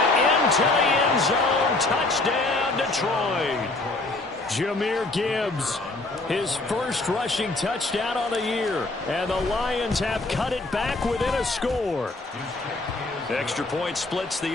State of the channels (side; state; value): right; quieter; 3.1 dB